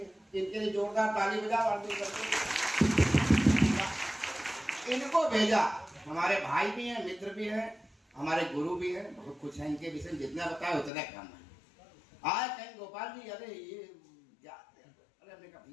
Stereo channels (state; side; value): drops out; right; at 10.9 s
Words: इनके लिए जोरदार ताली बजा, इनको भेजा। हमारे भाई भी हैं, मित्र भी हैं, हमारे गुरु भी हैं, बहुत कुछ है इनके विषय में, जितना बताया उतना कम है। आए कहीं गोपाल जी, अरे ये क्या, अरे हमने कहा